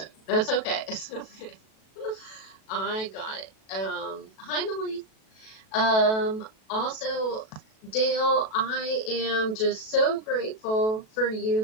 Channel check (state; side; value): late; right; 37 ms